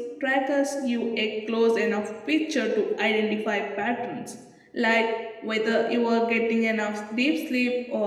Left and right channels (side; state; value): both; identical; correlation 1.00